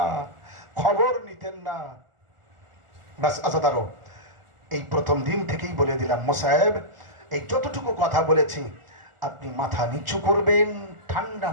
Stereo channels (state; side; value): late; left; 1.4 ms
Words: খবর নিতেন না। বাস আজাদারও এই প্রথম দিন থেকেই বলে দিলাম, মোসাহেব এই যতটুকু কথা বলেছি আপনি মাথা নিচু করবেন, ঠান্ডা